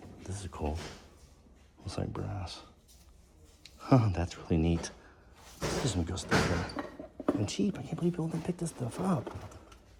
This is cool. Looks like brass. Huh, that's really neat. There's some good stuff there. And cheap. I can't believe people didn't pick this stuff up.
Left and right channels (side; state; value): both; identical; correlation 1.00